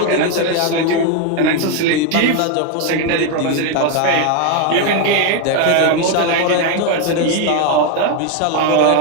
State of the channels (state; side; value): different; both; correlation 0.01